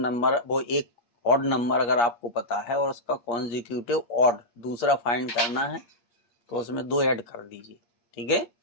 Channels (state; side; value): late; right; 8.5 ms